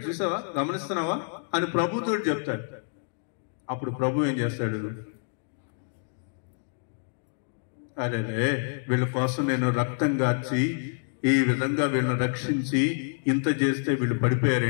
చూసావా, గమనిస్తున్నావా అని ప్రభుతో చెప్తాడు. అప్పుడు ప్రభు ఏం చేస్తాడు? అరే వీళ్ళ కోసం నేను రక్తం గార్చి ఈ విధంగా వీళ్ళని రక్షించి ఇంత చేస్తే వీళ్ళు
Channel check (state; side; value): silent; right; digital silence